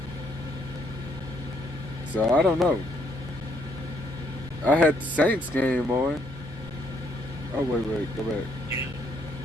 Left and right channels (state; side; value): normal; both; correlation 0.70